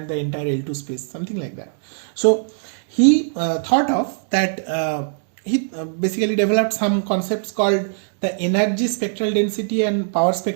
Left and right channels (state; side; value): silent; left; digital silence